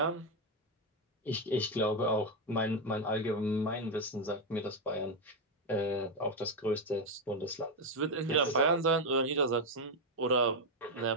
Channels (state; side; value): normal; both; correlation 0.05